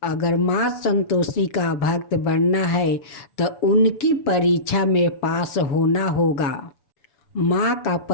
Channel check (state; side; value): late; right; 7.0 ms